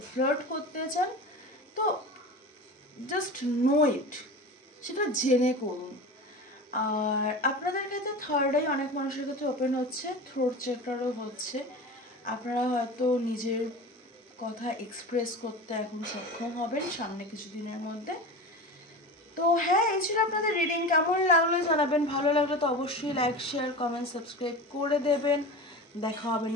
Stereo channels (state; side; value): normal; both; correlation 0.30